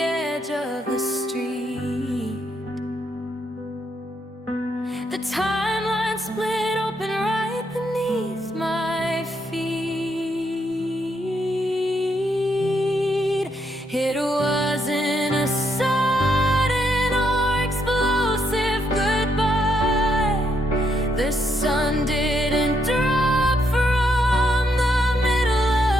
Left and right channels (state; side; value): normal; both; correlation 0.76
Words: of the street. The timeline split open right beneath my feet. It wasn't a sudden or explosive goodbye. The sun didn't drop from the middle